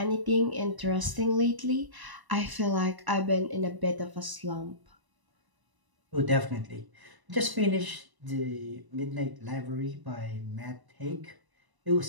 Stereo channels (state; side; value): late; left; 1.0 ms